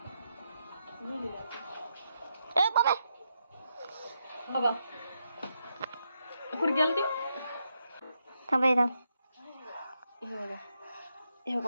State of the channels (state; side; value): inverted; both; correlation -0.82